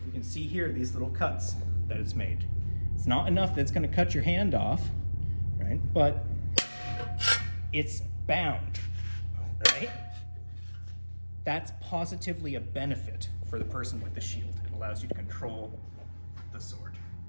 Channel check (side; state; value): both; inverted; correlation -1.00